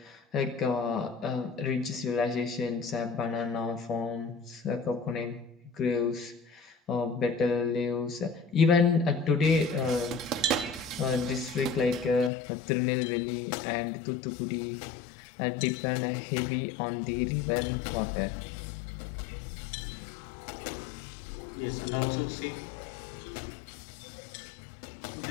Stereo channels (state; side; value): drops out; right; at 12.3 s